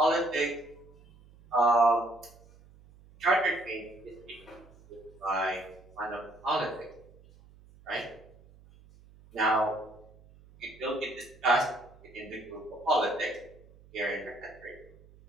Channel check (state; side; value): noise; right; hum, 24 dB below the sound